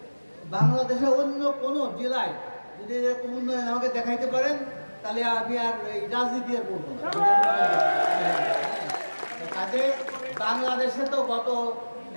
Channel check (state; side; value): inverted; both; correlation -1.00